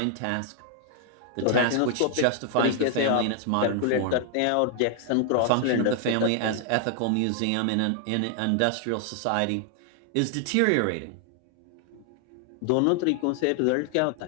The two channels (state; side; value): different; both; correlation 0.00